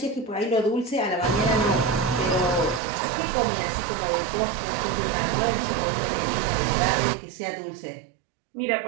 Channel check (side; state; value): left; drops out; at 2.8 s